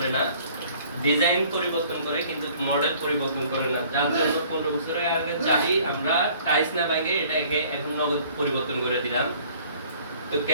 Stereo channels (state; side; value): inverted; both; correlation -0.54